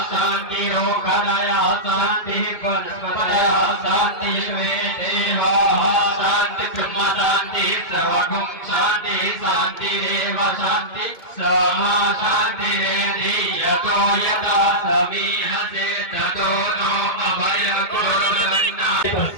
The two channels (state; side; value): late; right; 2.2 ms